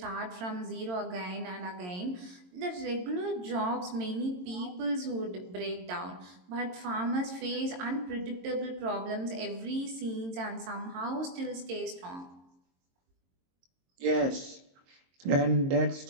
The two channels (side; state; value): left; late; 22 ms